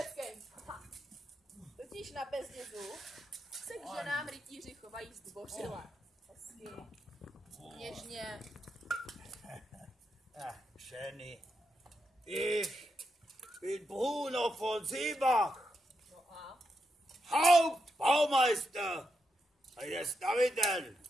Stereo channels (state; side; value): normal; both; correlation 0.84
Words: Totiž na Bezdězu se k ženám rytíři chovají zdvořile. Hezky. Něžně. Schöne. Ich bin Bruno von Seebach. No a? Hauptbaumeister eines Daviden.